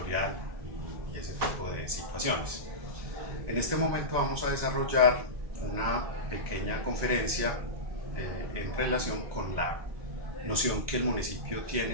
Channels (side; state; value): left; late; 1.9 ms